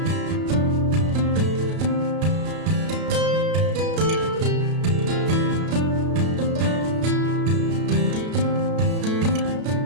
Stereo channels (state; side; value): late; left; 33 ms